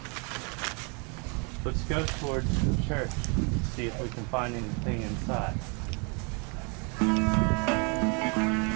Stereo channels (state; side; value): quieter; left; 33.8 dB